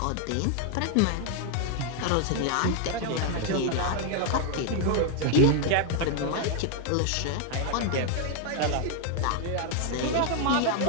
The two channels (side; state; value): both; different; correlation 0.00